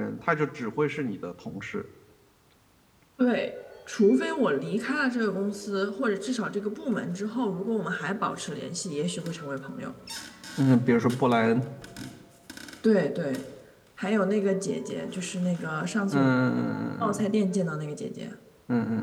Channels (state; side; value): identical; both; correlation 1.00